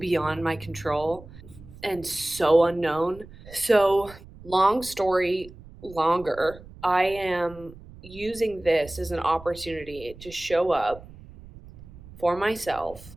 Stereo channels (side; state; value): right; noise; rumble, 19 dB below the sound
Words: my control and so unknown. So, long story longer, I am using this as an opportunity to show up for myself